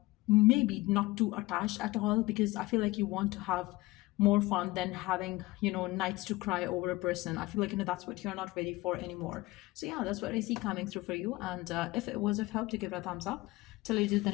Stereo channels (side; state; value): right; quieter; 20.1 dB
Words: maybe not too attached at all, because I feel like you want to have more fun than having nights to cry over a person. I feel like, that's what you're not ready for anymore. So yeah, that's what I see coming through for you. And if it was of help, to give it a thumbs up. Till I do the